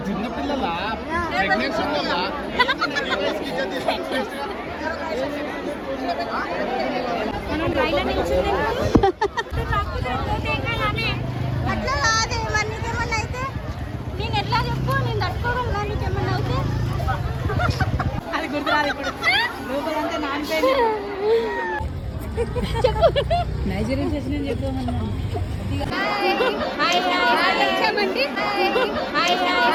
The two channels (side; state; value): both; identical; correlation 1.00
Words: చిన్నపిల్లల ప్రెగ్నెన్సీ అట్లా కాదే మరి నీకేమన్నా అయితే నేను ఎట్లా చెప్పు నేను తట్టుకోగలను కానీ నీకేమన్నా అయితే అది గుర్తురాదు ఇప్పుడు రూపదంతా నానిపోయింది నైజీరియన్ చేసిన చెప్పమన్నా